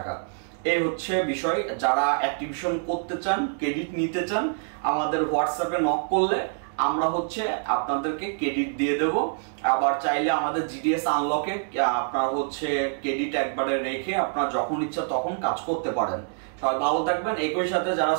এই বিষয়। যারা অ্যাক্টিভেশন করতে চান, ক্রেডিট নিতে চান, আমাদের হোয়াটসঅ্যাপে নক করলে আমরা আপনাদেরকে ক্রেডিট দিয়ে দেব। আবার চাইলে আমাদের জিডিএস আনলকে আপনারা ক্রেডিট একবারে রেখে আপনারা যখন ইচ্ছা তখন কাজ করতে পারেন। সবাই ভালো থাকবেন। একই সাথে যারা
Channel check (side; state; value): left; silent; digital silence